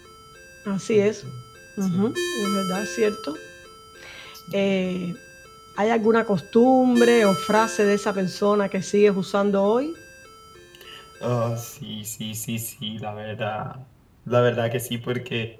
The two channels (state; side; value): identical; both; correlation 1.00